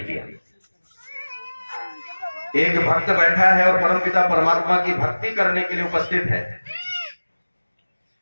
किया। एक भक्त बैठा है और परम पिता परमात्मा की भक्ति करने के लिए उपस्थित है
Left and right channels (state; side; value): inverted; both; correlation -1.00